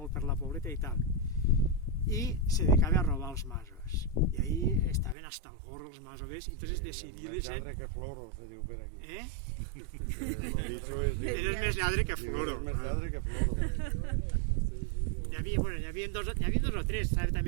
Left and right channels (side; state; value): left; drops out; at 5.2 s